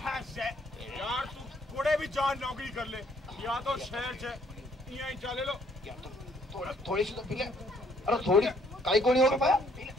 यार तू कोड़े भी जान नौकरी कर ले, या तो शहर से यहीं चले लो। या तो थोड़ी सी तो पी ले। अरे थोड़ी काई को नहीं हो पाया।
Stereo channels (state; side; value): normal; both; correlation 0.65